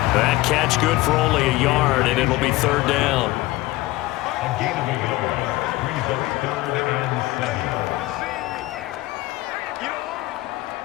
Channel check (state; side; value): quieter; right; 18.7 dB